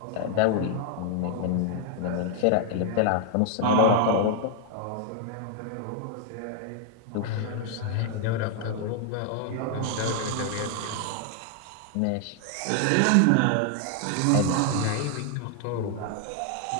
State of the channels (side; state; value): both; different; correlation 0.00